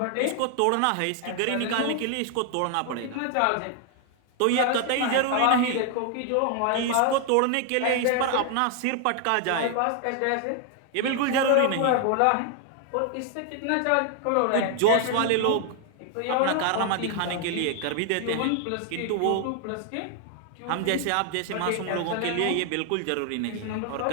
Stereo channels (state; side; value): different; both; correlation 0.00